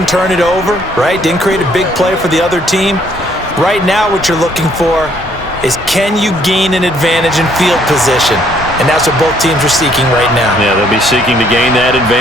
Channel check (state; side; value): normal; both; correlation 0.65